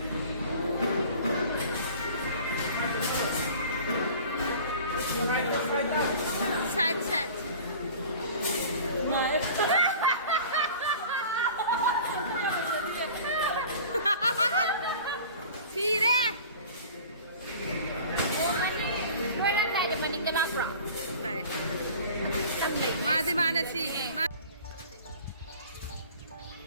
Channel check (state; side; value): inverted; both; correlation -0.43